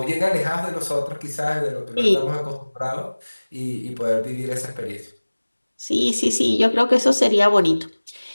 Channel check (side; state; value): both; inverted; correlation -1.00